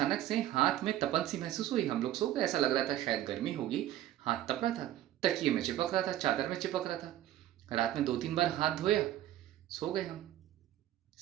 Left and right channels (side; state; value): left; quieter; 13.2 dB